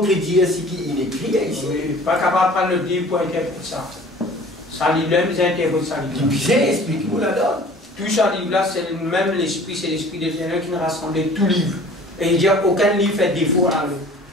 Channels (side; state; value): both; normal; correlation 0.47